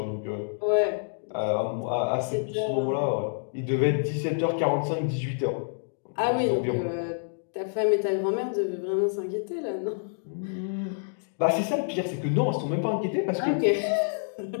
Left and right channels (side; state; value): right; silent; digital silence